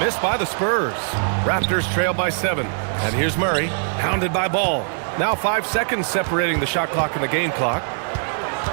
by the Spurs. Raptors trail by 7. And here's Murray, hounded by Ball. Now 5 seconds separating the shot clock and the game clock.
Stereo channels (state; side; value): silent; left; 64 dB below the other